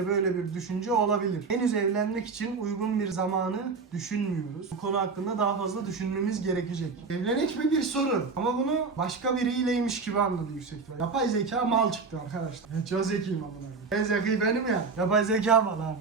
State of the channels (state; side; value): quieter; left; 4.6 dB